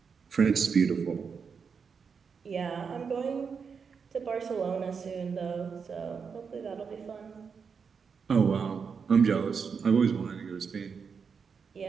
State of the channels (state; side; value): quieter; left; 5.9 dB